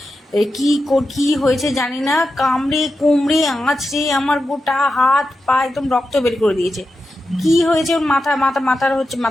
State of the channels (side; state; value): both; normal; correlation 0.89